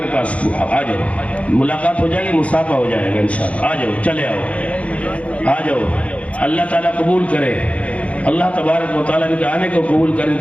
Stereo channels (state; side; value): late; right; 0.064 ms